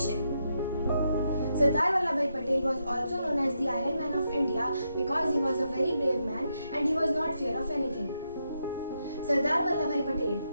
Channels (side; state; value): both; inverted; correlation -0.82